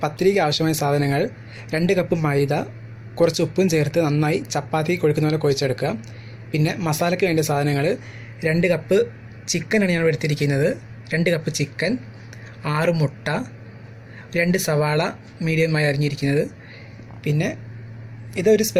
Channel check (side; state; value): both; identical; correlation 1.00